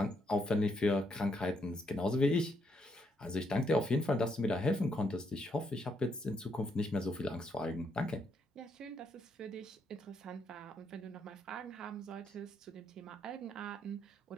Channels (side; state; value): both; normal; correlation 0.75